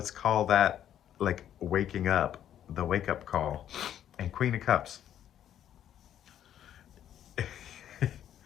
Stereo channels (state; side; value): quieter; right; 10.6 dB